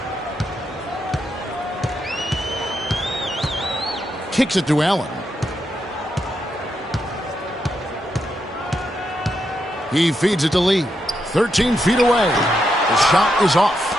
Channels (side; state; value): both; normal; correlation 0.82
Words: Kicks it to Allen. He feeds it to Lee. 13 feet away. The shot is off.